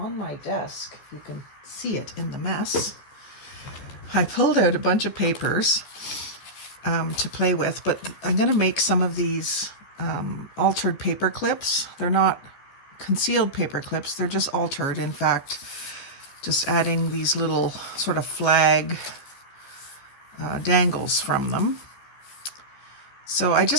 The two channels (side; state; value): right; late; 14 ms